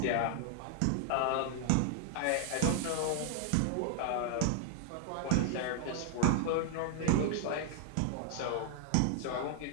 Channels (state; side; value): different; both; correlation 0.00